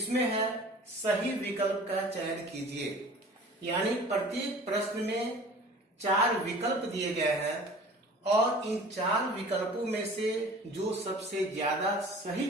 है सही विकल्प का चयन कीजिए। यानी प्रत्येक प्रश्न में 4 विकल्प दिए गए हैं और इन 4 विकल्पों में से जो सबसे ज्यादा सही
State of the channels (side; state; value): both; normal; correlation 0.44